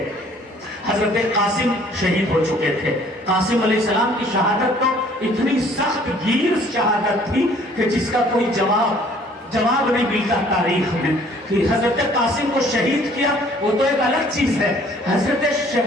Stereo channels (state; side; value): normal; both; correlation 0.57